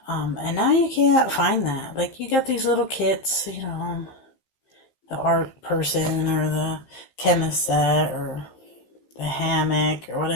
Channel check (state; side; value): late; right; 15 ms